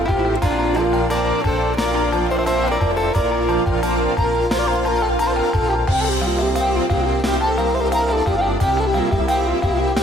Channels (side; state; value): both; normal; correlation 0.68